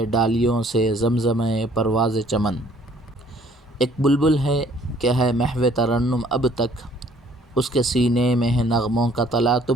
ڈالیوں سے زمزمہ پرواز چمن، ایک بلبل ہے کہ ہے محو ترنم اب تک، اس کے سینے میں ہے نغموں کا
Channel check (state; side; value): normal; both; correlation 0.59